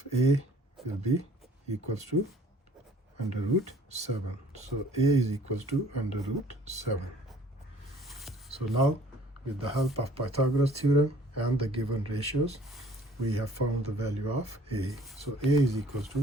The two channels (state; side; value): normal; both; correlation 0.54